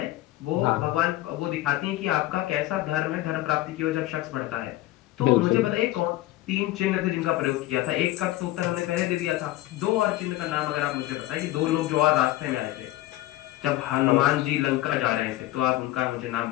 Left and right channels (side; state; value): right; quieter; 16.3 dB